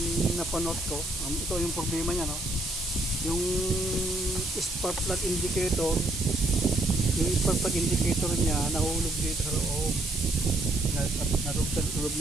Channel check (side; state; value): right; noise; hiss, 7 dB below the sound